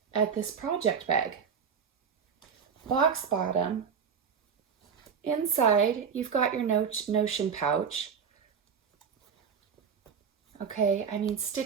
at this project bag. Box bottom. Inside, you've got your Notion pouch. Okay, I mean,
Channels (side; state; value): left; quieter; 6.6 dB